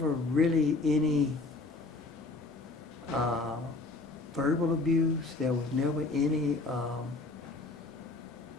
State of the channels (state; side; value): quieter; right; 3.3 dB